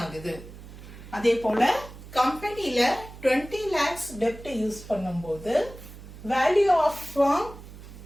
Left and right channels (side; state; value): right; noise; hum, 16 dB below the sound